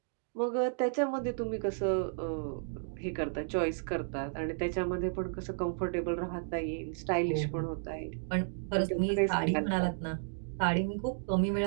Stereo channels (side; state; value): left; silent; digital silence